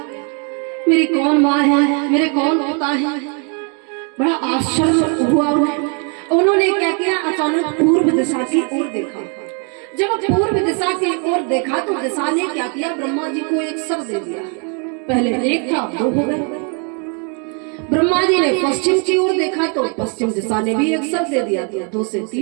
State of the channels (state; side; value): quieter; left; 37.8 dB